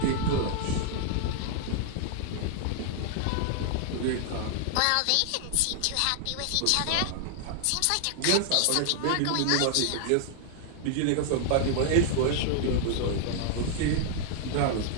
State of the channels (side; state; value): both; different; correlation 0.00